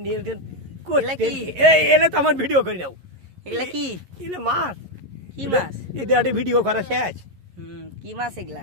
নিয়ন্ত্রণ এগুলা কি? এলে তো আমার ভিডিও করে নাও এগুলা কি? এলে মাছ কি মাছ? এটা একটা ভিডিও করা শেষ কি মাছ এগুলা?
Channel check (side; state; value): left; late; 11 ms